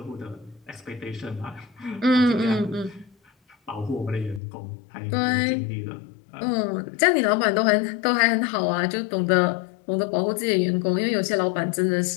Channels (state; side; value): drops out; right; at 4.4 s